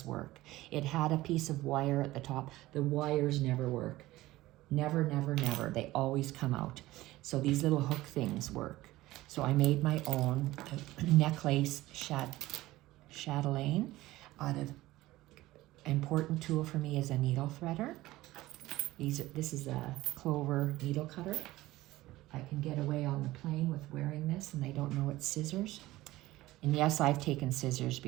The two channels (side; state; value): left; quieter; 17.4 dB